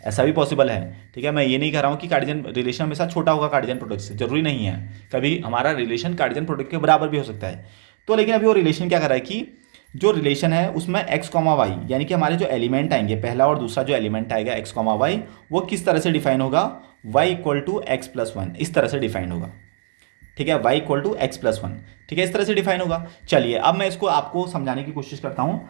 है। ठीक है, मैं ये नहीं कह रहा हूँ कि कार्डियन रिलेशन हमेशा छोटा होगा कार्डियन प्रोडक्ट से, जरूरी नहीं है। कभी हमारा रिलेशन कार्डियन प्रोडक्ट के बराबर भी हो सकता है। तो लेकिन अभी वो रिलेशन क्या कर रहा है कि जो रिलेशन है उसमें एक्स कॉमा वाई, यानी कि हमारे जो एलिमेंट आएंगे, पहला और दूसरा जो एलिमेंट आएगा एक्स कॉमा वाई, वो किस तरह से डिफाइन होगा, y equal to x plus one, इस तरह से डिफाइन होगा। ठीक है, y equal to x plus one. ठीक है, इस तरह से डिफाइन होगा। चलिए अब मैं इसको आपको समझाने की कोशिश करता हूँ,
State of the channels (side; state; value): left; silent; digital silence